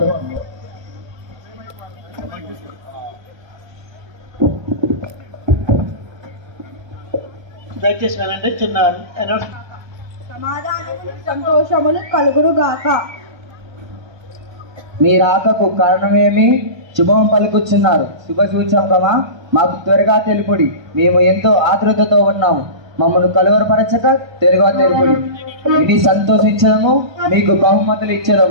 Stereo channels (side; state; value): left; late; 1.2 ms